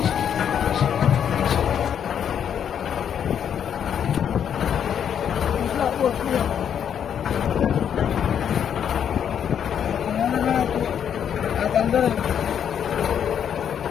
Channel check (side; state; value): right; quieter; 8.6 dB